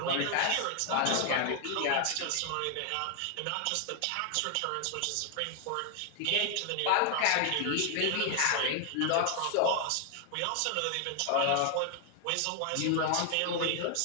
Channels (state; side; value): different; both; correlation 0.00